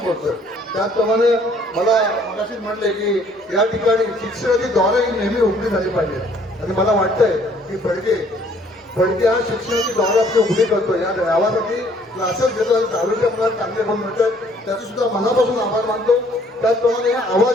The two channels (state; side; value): normal; both; correlation 0.61